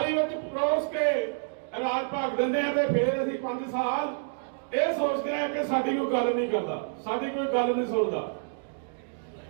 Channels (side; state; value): left; silent; digital silence